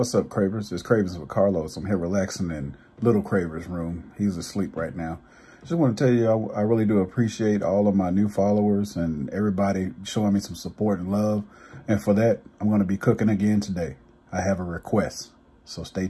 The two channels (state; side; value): identical; both; correlation 1.00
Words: up, Cravers? It's Cravings with Carlos. I'm here relaxing in Little Craver's room. He's asleep right now. Just want to tell you, I really do appreciate all of my new followers and everybody showing me some support and love. And for that, I'm going to be cooking again today. I have a request, so stay